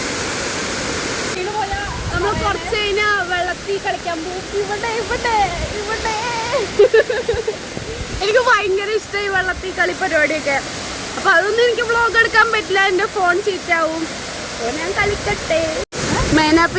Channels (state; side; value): identical; both; correlation 1.00